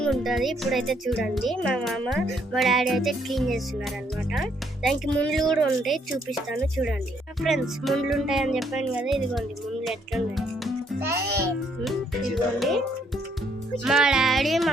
ఉంటుంది. ఇప్పుడైతే చూడండి, మా మామ మా డాడీ అయితే క్లీన్ చేస్తున్నారు అనమాట. దానికి ముండ్లు కూడా ఉంటాయి, చూపిస్తాను చూడండి. ఫ్రెండ్స్, ముండ్లు ఉంటాయని చెప్పాను కదా, ఇదిగోండి ముండ్లు ఎట్లున్నాయి. ఇదిగోండి, మా డాడీ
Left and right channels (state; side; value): normal; both; correlation 0.70